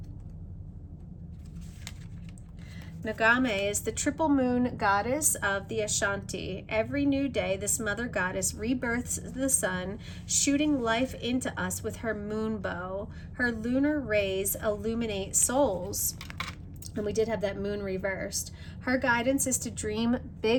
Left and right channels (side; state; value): both; identical; correlation 1.00